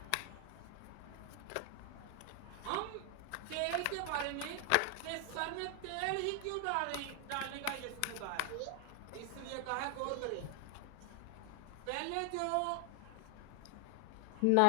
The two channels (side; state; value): both; different; correlation 0.00